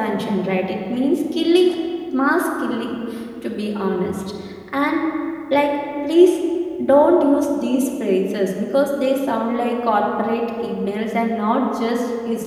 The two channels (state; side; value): identical; both; correlation 1.00